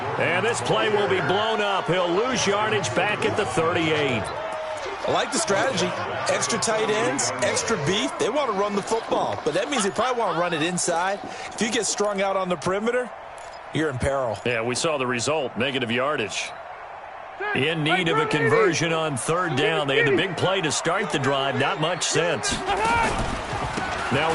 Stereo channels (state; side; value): identical; both; correlation 1.00